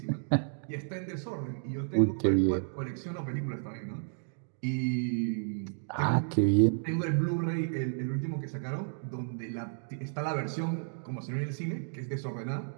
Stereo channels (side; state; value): left; silent; digital silence